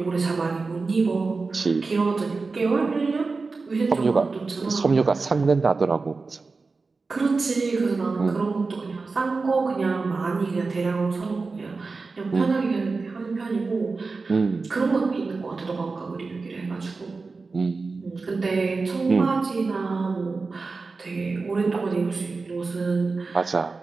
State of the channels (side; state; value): left; quieter; 4.1 dB